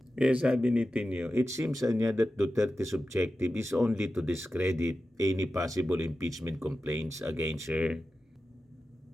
Kaya sabi ni Tino, it seems niya that Duterte's objective is only to discredit any possible impeachment complaints against her.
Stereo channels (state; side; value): normal; both; correlation 0.93